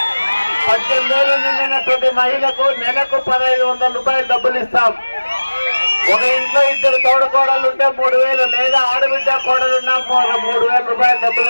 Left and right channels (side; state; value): both; inverted; correlation -1.00